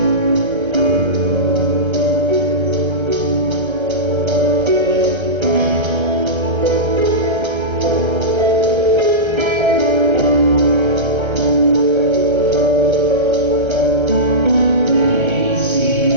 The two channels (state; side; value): late; left; 1.3 ms